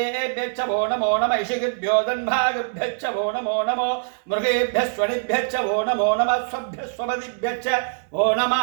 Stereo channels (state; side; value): silent; left; digital silence